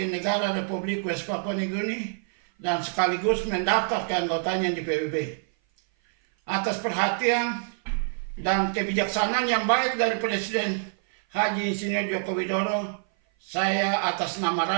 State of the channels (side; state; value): left; silent; 56 dB below the other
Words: negara Republik West Papua New Guinea dan sekaligus mendaftar keanggotanya di PBB. Atas perhatian dan kebijaksanaan yang baik dari Presiden Haji Insinyur Joko Widodo, saya atas nama